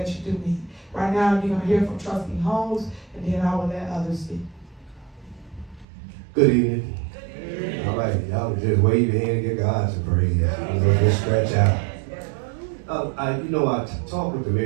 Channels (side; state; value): left; drops out; at 5.9 s